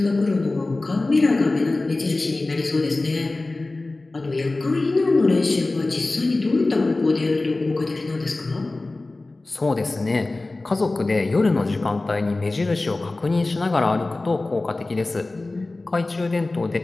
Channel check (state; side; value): quieter; right; 3.1 dB